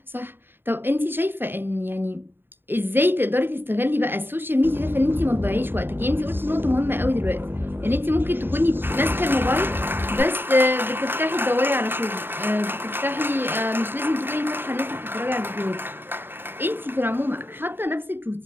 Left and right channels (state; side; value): late; left; 0.10 ms